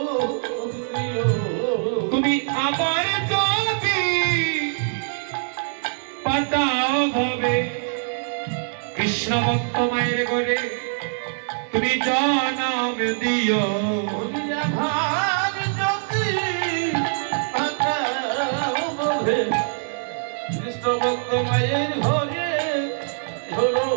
দিও তুমি আমার যদি পাঠাও ভাবে কৃষ্ণ ভক্ত মায়ের ঘরে তুমি জনম দিও ভার যদি পাঠাও কৃষ্ণ ভক্ত মায়ের ঘরে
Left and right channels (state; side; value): silent; left; 63 dB below the other